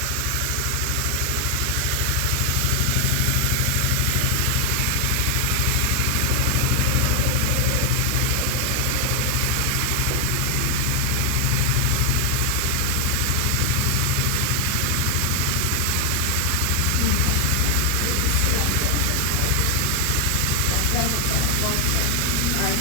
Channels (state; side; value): different; both; correlation 0.00